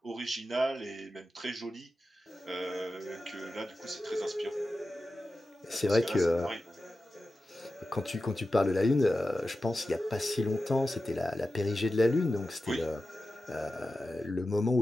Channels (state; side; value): normal; both; correlation 0.93